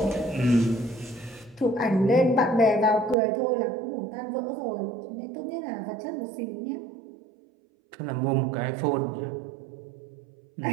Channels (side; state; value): left; drops out; at 3.2 s